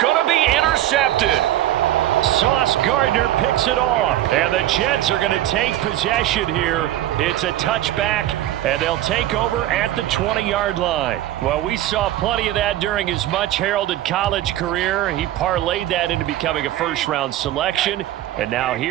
to be intercepted. Sauce Gardner picks it off. And the Jets are going to take possession here. It's a touchback And they'll take over at the 20-yard line. Well, we saw plenty of that during his much-heralded college career. He parlayed that into becoming a first-round selection. And now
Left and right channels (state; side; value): quieter; left; 13.5 dB